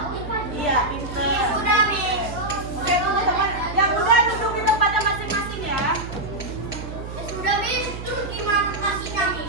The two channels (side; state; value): right; noise; hum, 9 dB below the sound